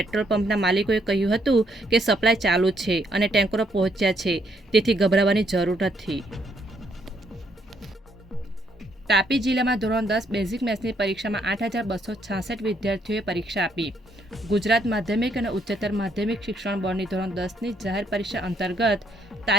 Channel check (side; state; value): both; normal; correlation 0.72